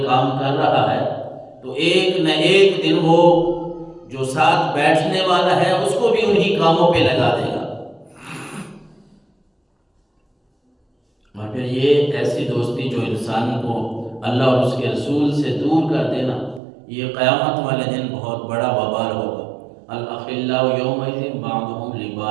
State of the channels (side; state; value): left; drops out; at 16.6 s